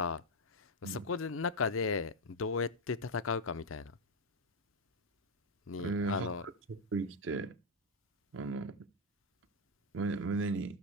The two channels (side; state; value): both; normal; correlation 0.03